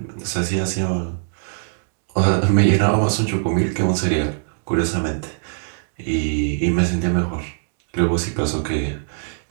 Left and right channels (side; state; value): left; silent; digital silence